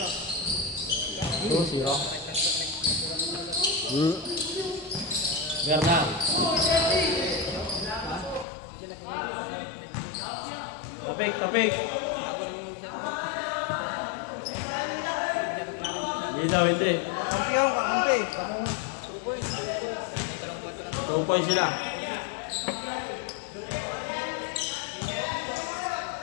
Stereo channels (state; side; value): drops out; right; at 8.5 s